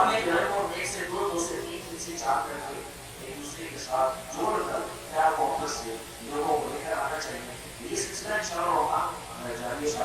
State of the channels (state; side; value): identical; both; correlation 1.00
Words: گھر کو 1 سے 2، 2 سے 3، 3 سے 4 کر کے ایک دوسرے کے ساتھ جوڑ کر پیار محبت سے لوگوں کو لے کر آنا چاہیے۔ یہ سلسلہ انشاءاللہ وہاں جاری